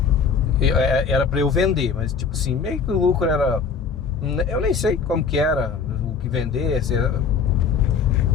era pra eu vender, mas tipo assim, meio que o lucro era... Eu nem sei como que era, o que vender,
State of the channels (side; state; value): right; quieter; 5.9 dB